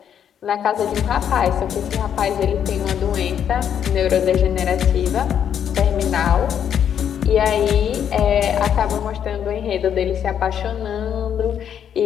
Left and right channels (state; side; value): quieter; right; 8.9 dB